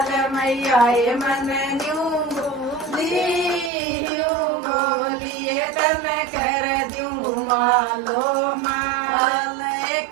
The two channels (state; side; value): drops out; left; at 3.7 s